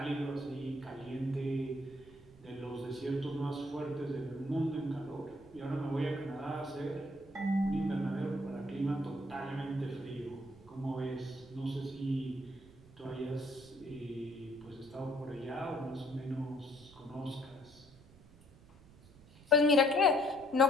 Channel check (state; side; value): noise; right; rumble, 23 dB below the sound